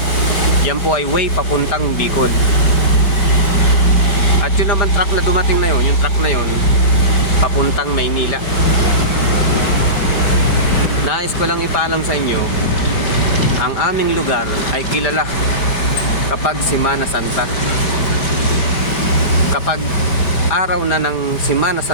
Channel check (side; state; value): right; late; 6.0 ms